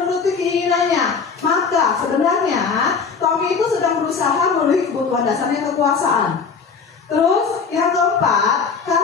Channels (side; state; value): right; quieter; 5.5 dB